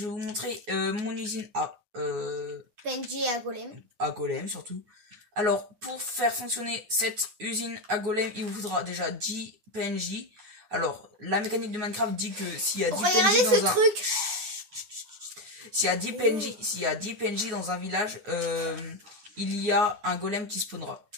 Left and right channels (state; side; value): late; left; 9.4 ms